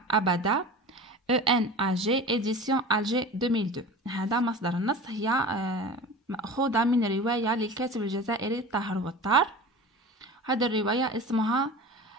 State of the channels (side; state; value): both; normal; correlation 0.35